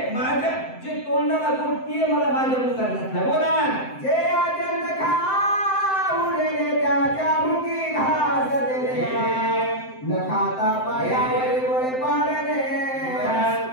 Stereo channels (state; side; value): late; right; 7.7 ms